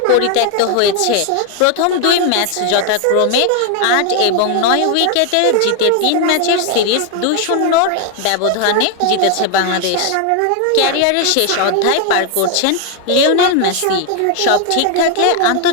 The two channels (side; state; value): both; different; correlation 0.00